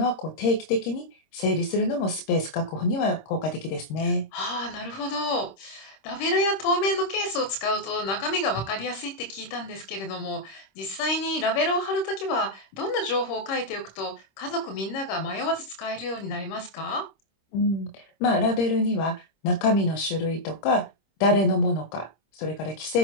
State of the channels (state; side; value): late; right; 26 ms